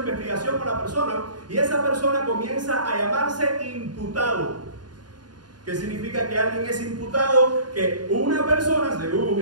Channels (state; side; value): late; left; 0.70 ms